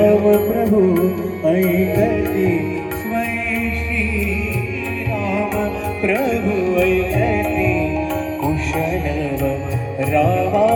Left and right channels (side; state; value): both; identical; correlation 1.00